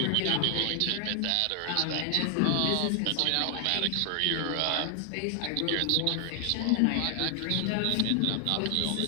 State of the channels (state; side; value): different; both; correlation 0.00